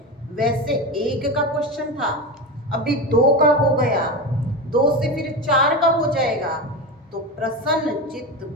वैसे एक का क्वेश्चन था, अभी 2 का हो गया, 2 से फिर 4 का हो जाएगा। तो प्रसन्न चित्त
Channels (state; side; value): normal; both; correlation 0.21